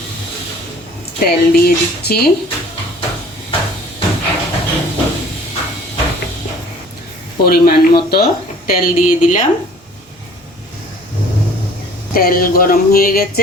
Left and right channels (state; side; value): normal; both; correlation 0.50